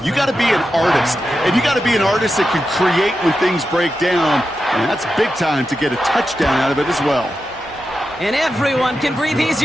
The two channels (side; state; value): both; normal; correlation 0.89